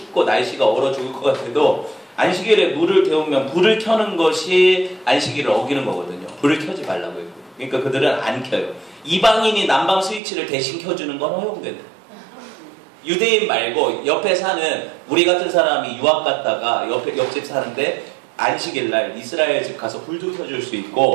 날씨가 얼어 죽을 것 같아도 안식일에 물을 데우면 불을 켜는 것이 안식일을 어기는 거거든요. 불을 켜지 말라고 했고. 그러니까 그들은 안 켜요. 이방인이 난방 스위치를 대신 켜주는 건 허용된다. 유대인 말고 옆에 사는 우리 같은 사람이 유학 갔다가 옆집 사는데 안식일 날 이스라엘 집 가서 불도 켜줄 수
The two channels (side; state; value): left; drops out; at 10.2 s